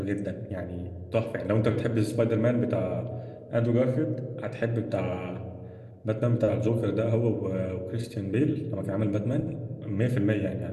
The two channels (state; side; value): identical; both; correlation 1.00